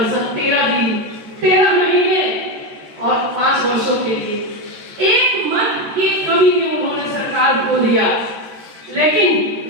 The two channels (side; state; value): left; late; 13 ms